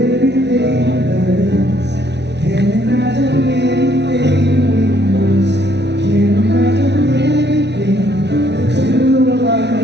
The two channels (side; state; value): left; late; 0.50 ms